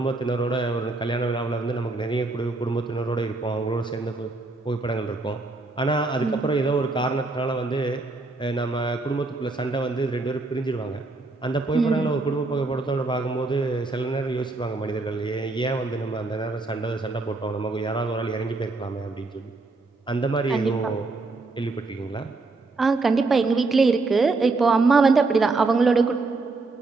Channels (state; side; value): quieter; left; 3.6 dB